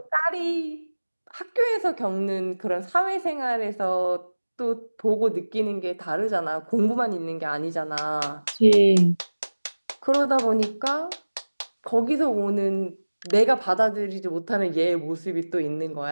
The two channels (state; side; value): inverted; both; correlation -1.00